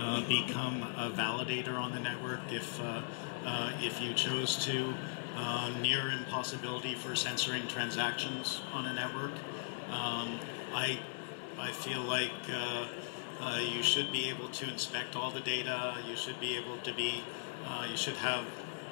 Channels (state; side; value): silent; right; 52 dB below the other